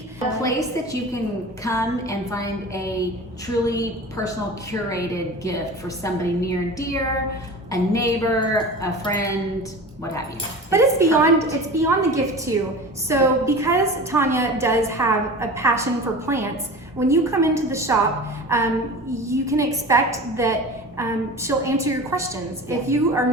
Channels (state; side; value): normal; both; correlation 0.35